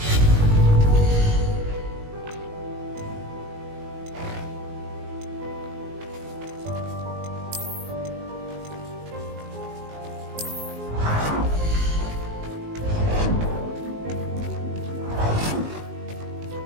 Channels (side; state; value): left; late; 19 ms